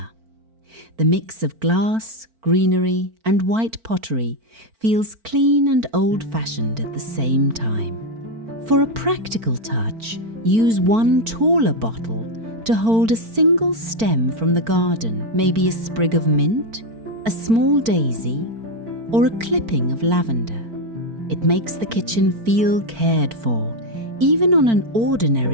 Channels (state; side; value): late; left; 4.4 ms